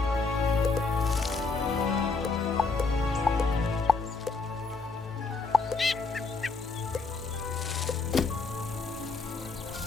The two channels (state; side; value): quieter; right; 4.1 dB